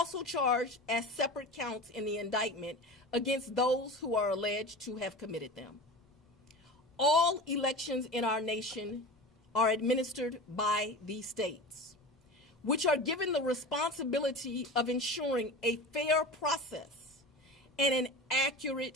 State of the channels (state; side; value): normal; both; correlation 0.31